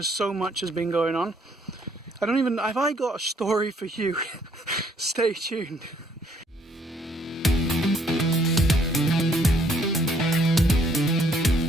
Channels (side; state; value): both; normal; correlation 0.66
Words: so much has been going on. Have I got a story for you? Stay tuned.